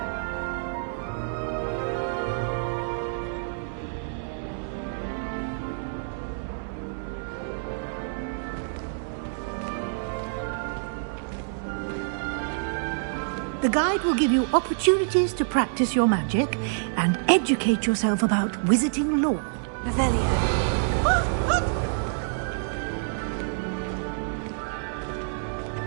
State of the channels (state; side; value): silent; left; digital silence